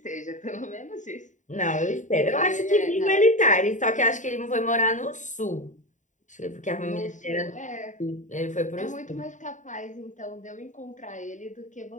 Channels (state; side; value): late; right; 0.36 ms